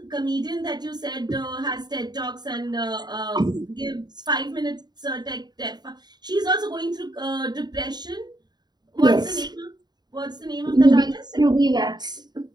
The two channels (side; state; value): left; late; 0.20 ms